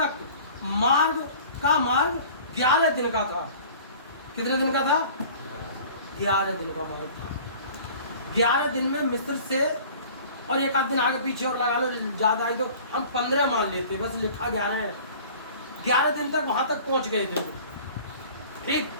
मार्ग 11 दिन का था। कितने दिन का था? 11 दिन का मार्ग था। 11 दिन में मिस्र से, और एक आध दिन आगे पीछे और लगा लो, ज्यादा आई तो हम 15 मान लेते, बस लिखा 11 है। 11 दिन तक वहां तक पहुंच गए थे। ठीक,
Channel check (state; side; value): inverted; both; correlation -0.45